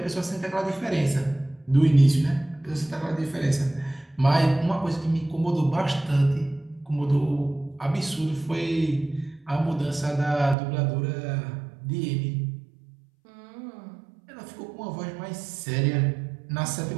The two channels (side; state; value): left; drops out; at 10.6 s